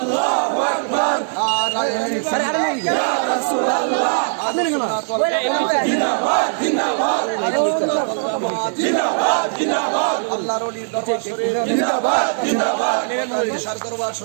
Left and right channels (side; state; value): left; silent; digital silence